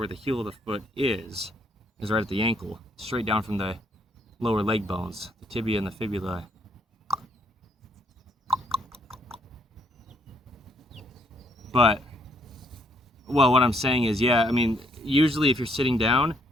the heel of the foot is right at the ankle, straight down from the lower leg bones, the tibia and the fibula. But, well, what I'm saying is, yeah, I mean, usually if you're sitting down,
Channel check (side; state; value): both; normal; correlation 0.69